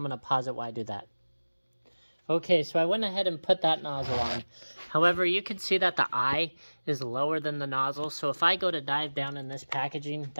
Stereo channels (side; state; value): both; inverted; correlation -1.00